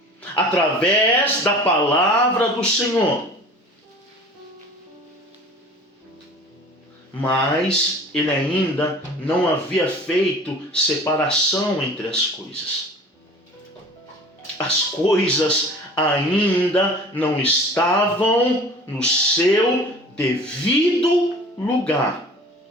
através da palavra do Senhor. Mas ele ainda não havia feito separação entre as coisas. As coisas ainda não estavam no seu devido lugar.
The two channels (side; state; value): both; normal; correlation 0.43